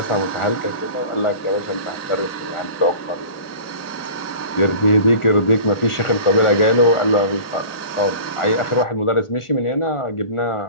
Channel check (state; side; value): late; right; 1.4 ms